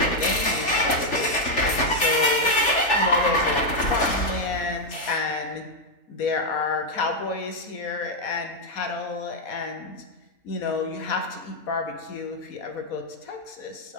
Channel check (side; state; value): right; late; 3.4 ms